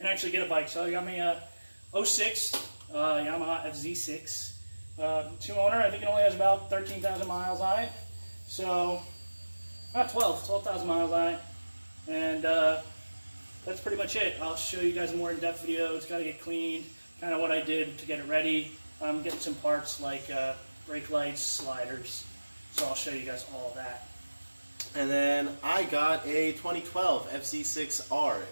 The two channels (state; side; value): inverted; both; correlation -1.00